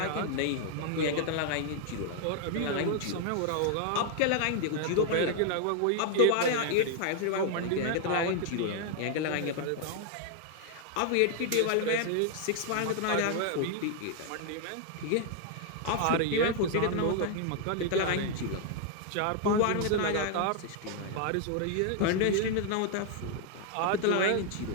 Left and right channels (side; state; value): both; different; correlation 0.00